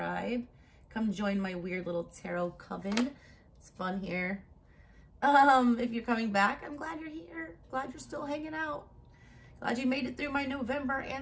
Come join my weird little tarot coven. It's fun here. If you're coming back, I'm glad you're here. Glad you're still hanging out. Glad you made it through my November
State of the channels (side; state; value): both; identical; correlation 1.00